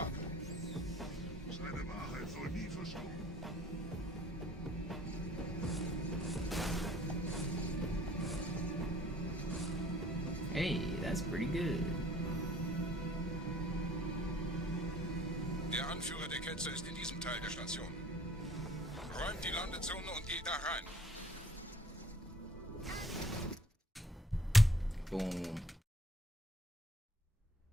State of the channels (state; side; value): normal; both; correlation 0.55